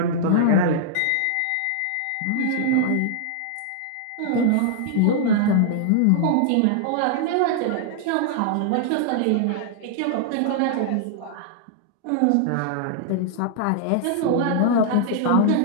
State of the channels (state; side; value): different; both; correlation -0.01